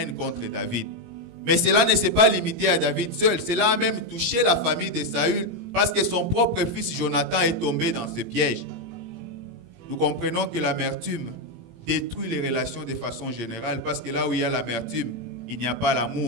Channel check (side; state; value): left; late; 17 ms